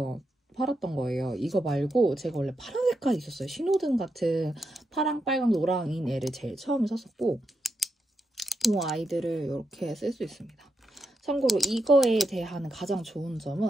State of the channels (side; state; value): both; normal; correlation 0.84